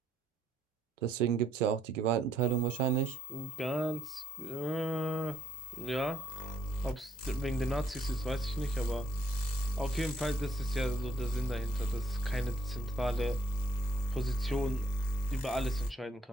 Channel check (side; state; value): both; normal; correlation 0.67